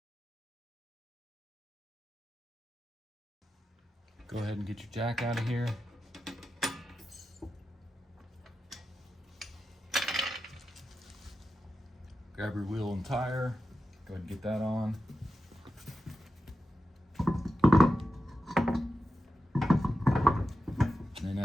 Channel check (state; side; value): normal; both; correlation 0.91